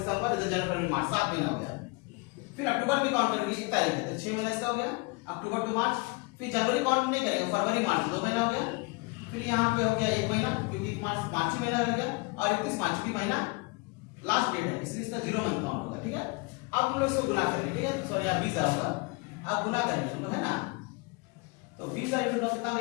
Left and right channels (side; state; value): right; quieter; 28.1 dB